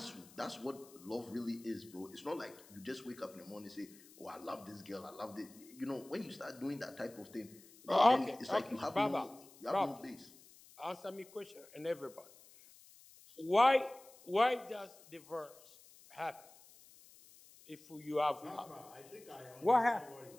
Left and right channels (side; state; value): left; noise; hiss, 23 dB below the sound